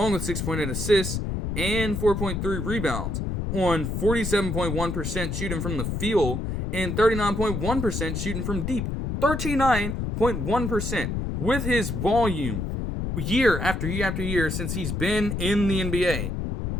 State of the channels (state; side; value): noise; left; rumble, 2 dB below the sound